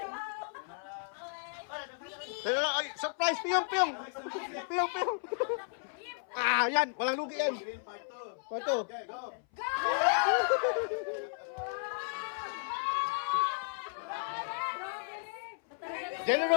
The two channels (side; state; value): right; silent; 55 dB below the other